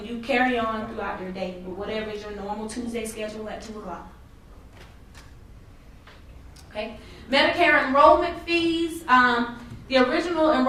you carry on throughout your day with whatever is your normal Tuesday schedule at 2 o'clock. Okay. Medicare enrollment fees. The original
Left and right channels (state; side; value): identical; both; correlation 1.00